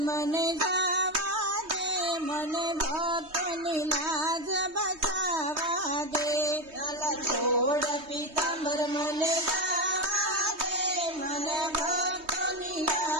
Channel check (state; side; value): late; left; 3.2 ms